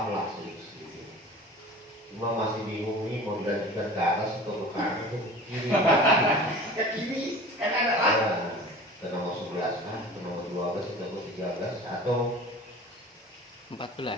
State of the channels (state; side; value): normal; both; correlation 0.40